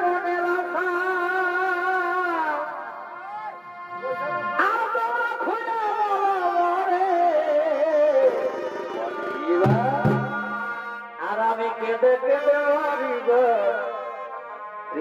কেঁদে কেঁদে মারিব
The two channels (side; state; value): both; identical; correlation 1.00